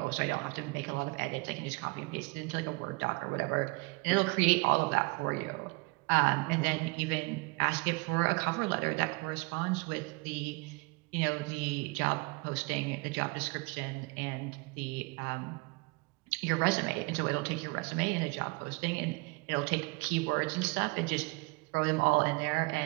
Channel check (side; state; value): left; quieter; 27.7 dB